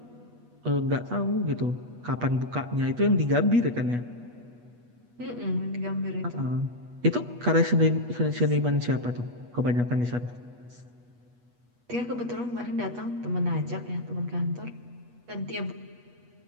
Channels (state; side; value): late; left; 8.3 ms